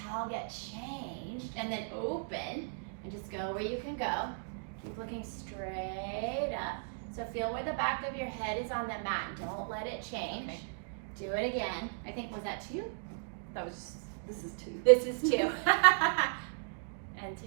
get changed. And then open and just go where you can go. Keep looking straight up. So feel where the back of your head is on the mat and don't let it change. Okay. Do it again. I think, was that 2? That was just, this is 2. This is 2. And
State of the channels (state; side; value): silent; left; digital silence